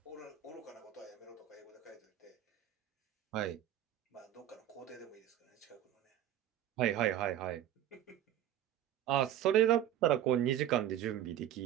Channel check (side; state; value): left; quieter; 11.4 dB